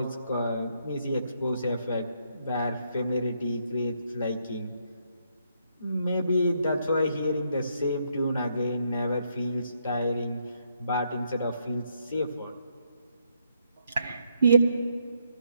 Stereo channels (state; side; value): inverted; both; correlation -0.75